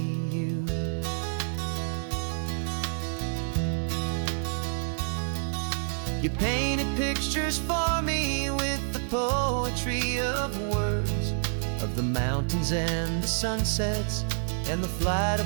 you. You painted pictures for me with the poetry of words, of the mountains and the sunsets and the flight of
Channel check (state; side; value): silent; left; digital silence